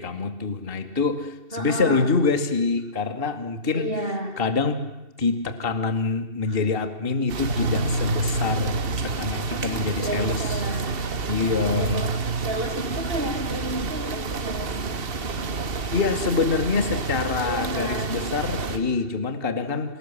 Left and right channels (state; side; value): late; left; 2.7 ms